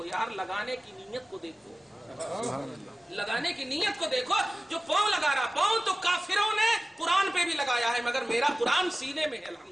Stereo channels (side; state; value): both; normal; correlation 0.96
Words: यार, लगाने की नीयत को देखो, लगाने की नीयत को देखो। जो पाँव लगा रहा, पाँव तो काफिरों ने कुरान पे भी लगाया है, मगर मेरा कुरान सीने में है